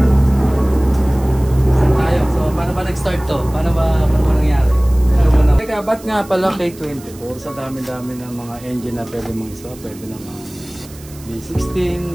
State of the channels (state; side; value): noise; right; hiss, 21 dB below the sound